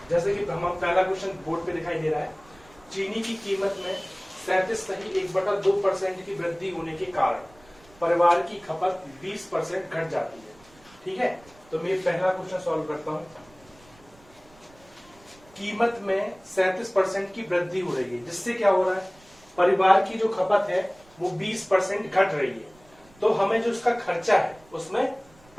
जैसे कि हम पहला क्वेश्चन बोर्ड पे दिखाई दे रहा है। चीनी की कीमत में 37.1/2% की वृद्धि होने के कारण परिवार की खपत 20% घट जाती है। ठीक है, तो मैं पहला क्वेश्चन सॉल्व करता हूं। कीमत में 37% की वृद्धि हो रही है, जिससे क्या हो रहा है, परिवार की जो खपत है वो 20% घट रही है। तो हमें जो उसका खर्चा है उसमें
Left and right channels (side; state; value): right; noise; rumble, 27 dB below the sound